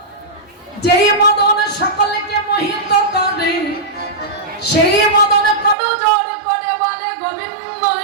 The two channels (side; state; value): left; drops out; at 5.8 s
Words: যেই মদন সকলকে মোহিত করে, সেই মদন কত জোর করে বলে গোবিন্দ